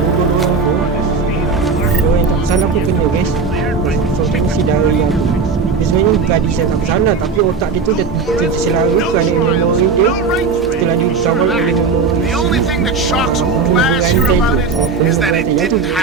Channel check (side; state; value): left; quieter; 4.7 dB